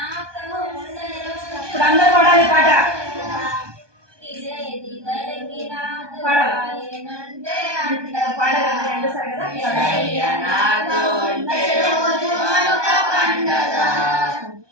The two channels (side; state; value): left; late; 1.2 ms